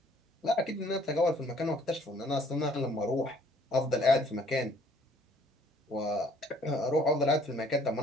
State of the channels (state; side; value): normal; both; correlation 0.60